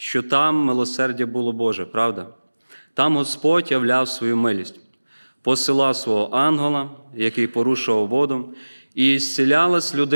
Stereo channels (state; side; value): inverted; both; correlation -1.00